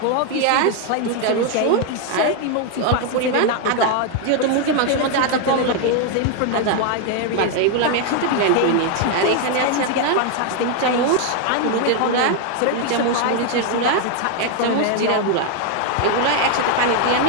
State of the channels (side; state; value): both; different; correlation 0.01